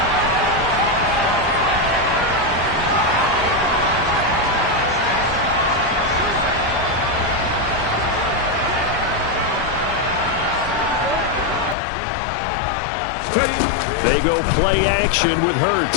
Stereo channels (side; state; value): right; drops out; at 11.8 s